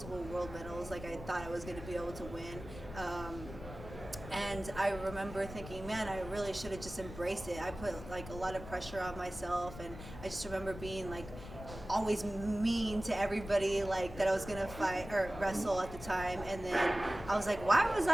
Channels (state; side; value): noise; left; rumble, 12 dB below the sound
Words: world medals like I thought I was going to be able to win. And I remember thinking, man, I really should have just embraced it. I put a lot of pressure on myself, and I just remember being always mean to everybody that I was gonna fight or wrestle at the time. And then I was like, why did